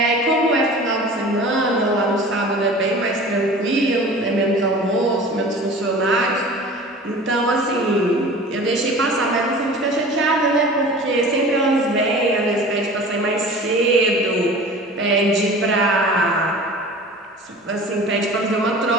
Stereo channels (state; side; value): normal; both; correlation 0.40